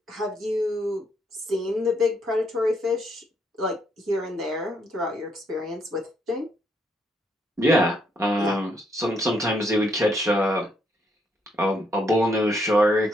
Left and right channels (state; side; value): normal; both; correlation 0.74